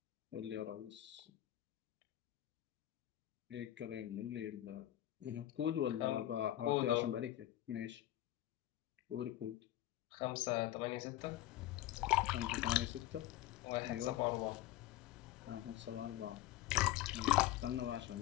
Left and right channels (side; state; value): right; quieter; 14.1 dB